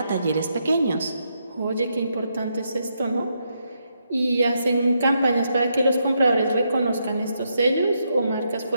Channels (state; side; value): inverted; both; correlation -0.80